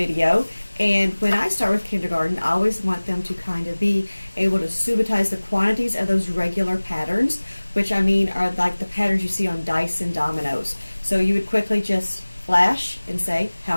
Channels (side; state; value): both; inverted; correlation -1.00